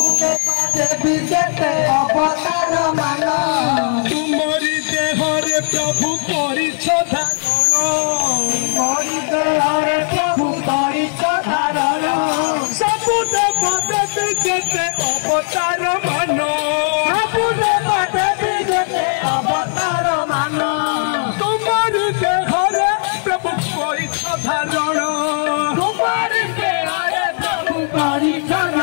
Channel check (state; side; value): silent; right; digital silence